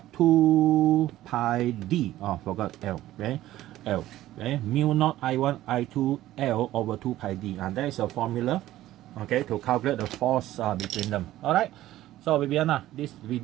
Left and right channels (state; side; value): quieter; left; 14.6 dB